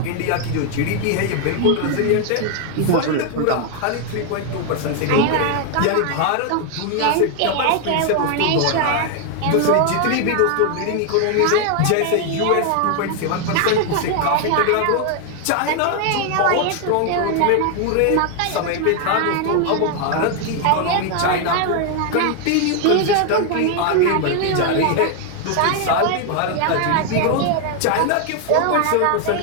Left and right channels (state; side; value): different; both; correlation 0.00